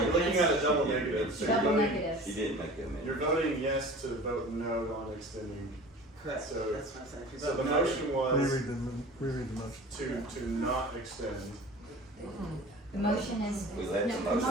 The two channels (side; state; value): both; normal; correlation 0.40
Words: you're looking against- at a double negative. So you're Double voting, She negatives. didn't make that amendment. you're voting yes to vote no on extending. Correct, So- that's what I'm saying. If you So vote the no- motion was Reread the motion. to not extend. The motion is. We let No, the the motion